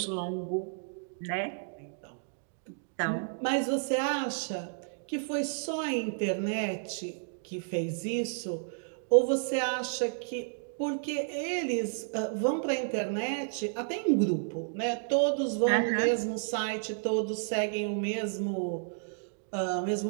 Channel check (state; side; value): silent; left; digital silence